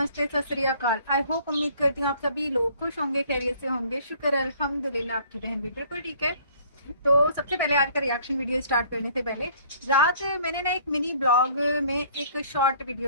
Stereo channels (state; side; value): inverted; both; correlation -0.56